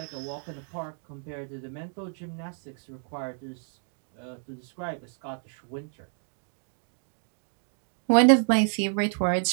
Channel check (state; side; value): silent; left; 58 dB below the other